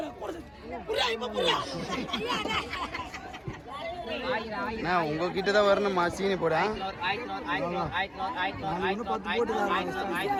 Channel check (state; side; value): identical; both; correlation 1.00